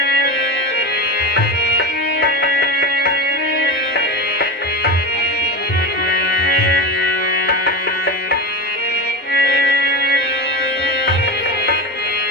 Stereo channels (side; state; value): both; normal; correlation 0.21